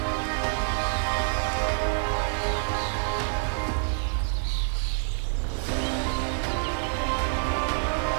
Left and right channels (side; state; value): left; silent; digital silence